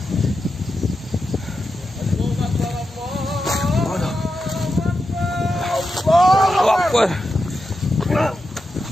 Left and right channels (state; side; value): normal; both; correlation 0.88